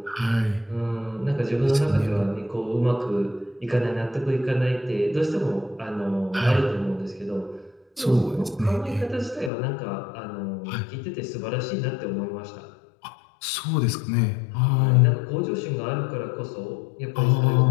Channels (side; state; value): right; drops out; at 9.5 s